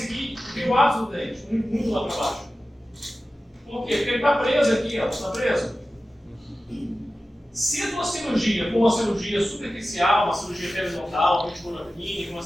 ver o ápice do dente, muito lá para baixo. Por quê? Porque ele está preso aqui, ó. Está preso. Se a tua cirurgia for uma cirurgia superficial, uma cirurgia periodontal, uma mandibular clínica, uma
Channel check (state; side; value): normal; both; correlation 0.95